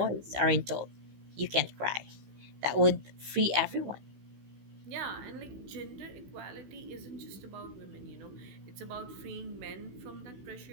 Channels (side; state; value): left; late; 16 ms